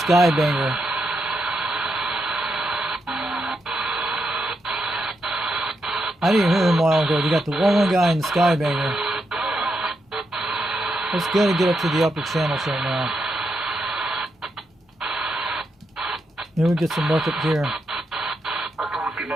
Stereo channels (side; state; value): both; normal; correlation 0.83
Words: I didn't hear him a while ago. You got the one guy and the Skybanger. Let's go to get up to the upper channels right now. Then we get some luck up here.